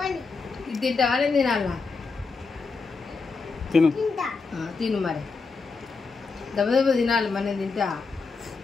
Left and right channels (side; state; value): right; quieter; 4.4 dB